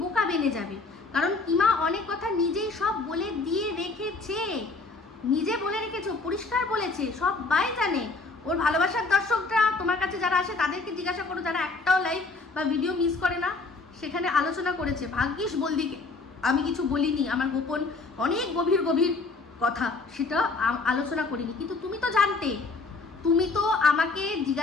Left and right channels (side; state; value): right; quieter; 3.8 dB